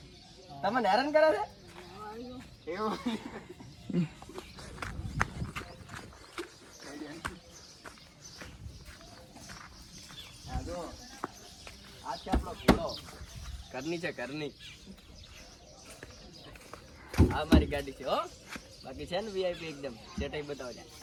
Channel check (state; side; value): identical; both; correlation 1.00